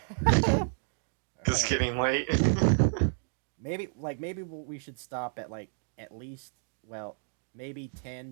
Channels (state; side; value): silent; left; 57 dB below the other